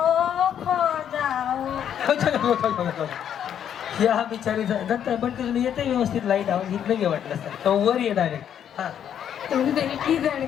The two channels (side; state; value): right; quieter; 9.3 dB